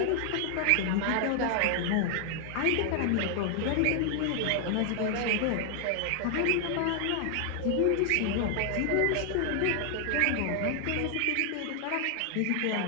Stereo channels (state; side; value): different; both; correlation 0.00